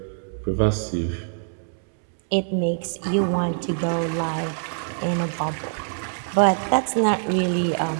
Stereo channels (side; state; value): left; silent; digital silence